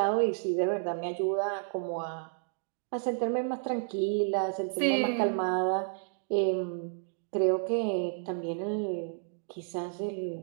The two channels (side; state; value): left; silent; digital silence